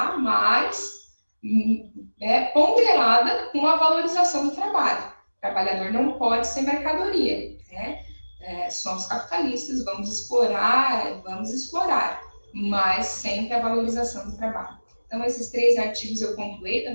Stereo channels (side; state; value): both; inverted; correlation -1.00